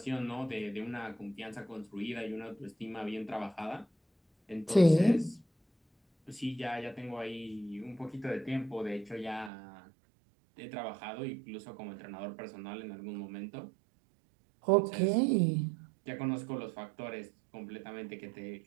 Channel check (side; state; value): left; drops out; at 9.5 s